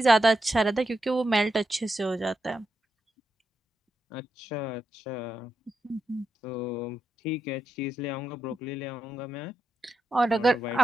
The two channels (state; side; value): normal; both; correlation 0.85